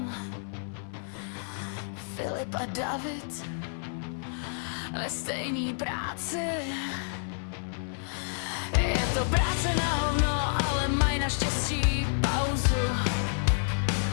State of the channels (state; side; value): silent; right; 56 dB below the other